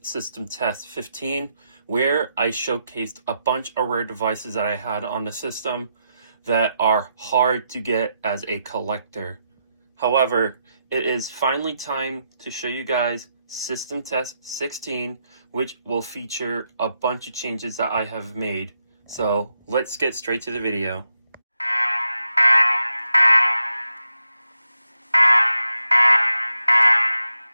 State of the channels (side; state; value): both; inverted; correlation -0.83